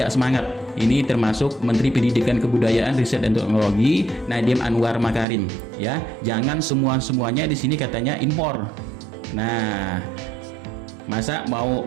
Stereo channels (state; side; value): drops out; left; at 5.2 s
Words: semangat. Ini termasuk Menteri Pendidikan Kebudayaan Riset dan Teknologi Nadiem Anwar Makarim. Ya, jangan semuanya di sini katanya impor. Nah, masa mau